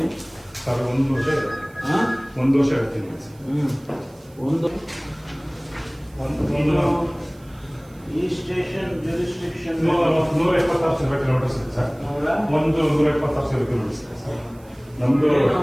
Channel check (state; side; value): noise; right; hiss, 29 dB below the sound